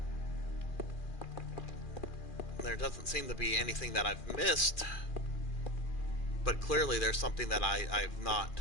There doesn't seem to be anything that I've missed, but clearly there's something that I've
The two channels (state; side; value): late; right; 2.4 ms